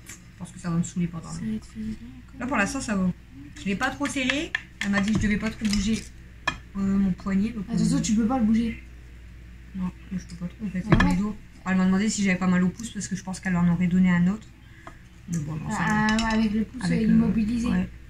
je pense que ça va me saouler pendant. Là pour l'instant ça va. Je l'ai pas trop serré. Elle m'a dit que je devais pas trop bouger mon poignet. Attention tu peux pas le bouger. Non je peux pas trop en fait avec mes doigts. Elle m'a demandé si j'avais pas mal au pouce parce que je pense qu'elle en aurait donné un autre. Mais bon non ça va. Avec le pouce immobilisé. Ouais.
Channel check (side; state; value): both; identical; correlation 1.00